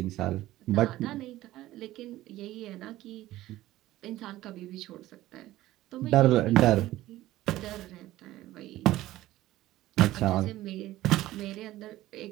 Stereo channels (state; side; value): quieter; left; 15.8 dB